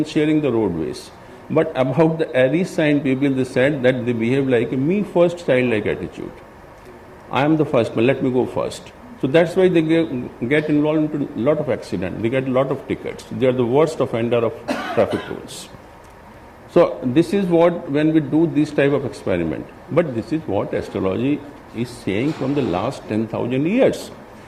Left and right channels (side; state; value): both; identical; correlation 1.00